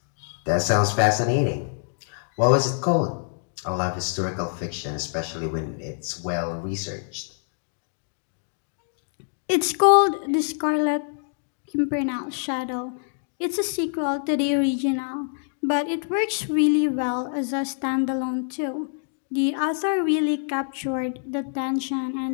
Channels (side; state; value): right; silent; digital silence